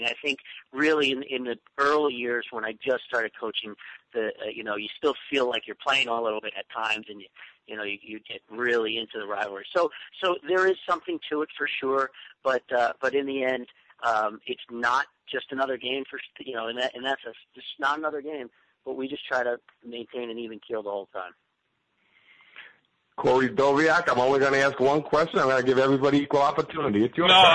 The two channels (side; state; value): both; identical; correlation 1.00